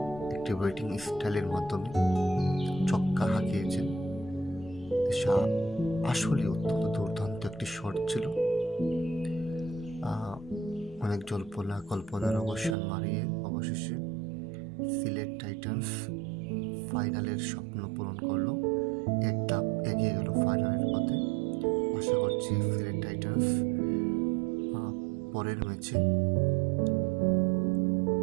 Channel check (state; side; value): drops out; left; at 12.8 s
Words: একটি ব্যাটিং স্টাইলের মাধ্যমে ছক্কা হাঁকিয়েছেন, আসলে অত্যন্ত দুর্দান্ত একটি শট ছিল। অনেক জল্পনা কল্পনার অবসান মারিয়ে অবশেষে সিলেট টাইটান্স ফাইনালের স্বপ্ন পূরণ করলো, এক ধাপ এগিয়ে গেল ফাইনালের পথে। আশা করছি সিলেট টাইটান্স পরের ম্যাচে